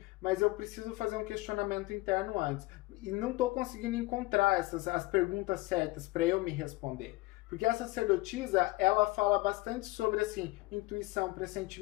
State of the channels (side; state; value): right; quieter; 20.9 dB